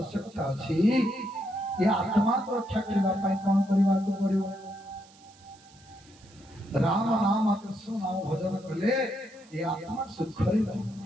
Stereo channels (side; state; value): right; noise; hiss, 27 dB below the sound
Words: अच्छी ये आत्मा को रक्षा करने कौन करने को पड़ो राम नाम कृष्ण नाम भजन कले ये आत्मा सुख